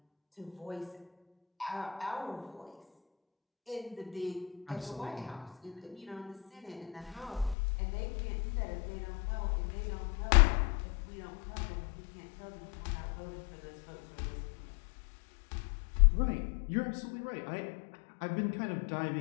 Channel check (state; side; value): drops out; right; at 7.6 s